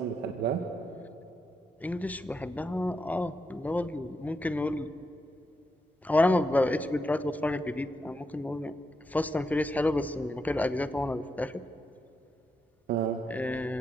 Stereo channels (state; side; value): normal; both; correlation 0.83